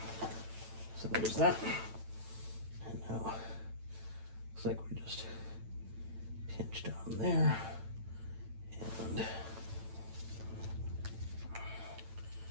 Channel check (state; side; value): late; left; 9.0 ms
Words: So there's that. And now looks like we're just pinched on there. And